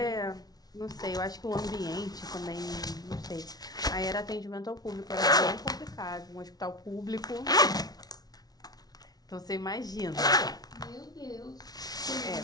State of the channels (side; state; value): right; late; 0.19 ms